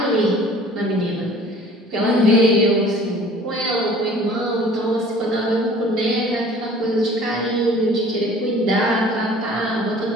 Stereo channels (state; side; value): normal; both; correlation 0.49